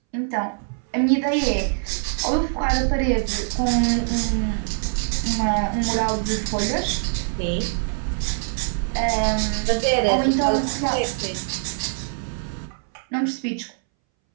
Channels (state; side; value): silent; left; 62 dB below the other